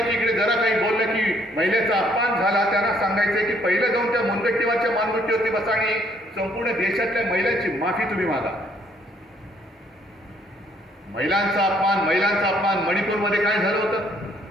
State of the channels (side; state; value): both; normal; correlation 0.66